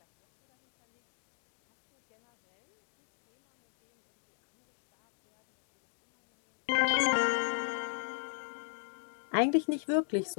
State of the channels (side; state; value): right; silent; digital silence